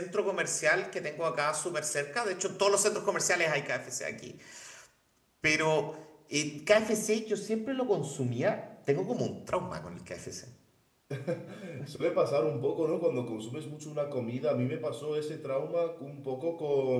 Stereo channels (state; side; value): identical; both; correlation 1.00